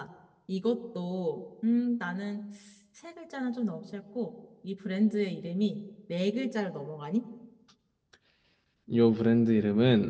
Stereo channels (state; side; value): identical; both; correlation 1.00